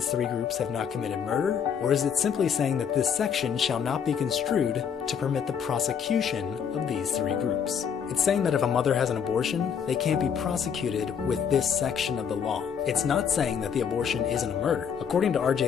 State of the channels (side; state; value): right; quieter; 7.4 dB